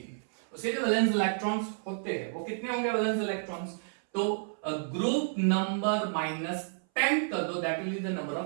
उसके जो वैलेंस इलेक्ट्रॉन्स होते हैं वो कितने होंगे वैलेंस इलेक्ट्रॉन्स? तो ग्रुप नंबर -10 कर दो, that will be the number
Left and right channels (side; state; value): left; silent; 57 dB below the other